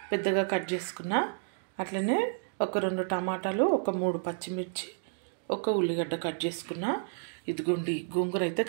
పెద్దగా కట్ చేసుకున్నా. అట్లనే ఒక 2 టమాటాలు, ఒక 3 పచ్చిమిర్చి, ఒక ఉల్లిగడ్డ కట్ చేసుకున్నా. ఇదిగోండి గోంగూర అయితే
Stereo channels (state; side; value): silent; left; digital silence